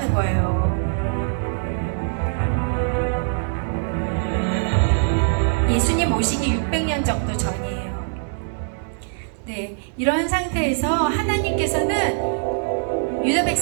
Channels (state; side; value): silent; left; digital silence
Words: 거예요. 예수님 오시기 600년 정도 전이에요. 네, 이런 상태에서 하나님께서는 유다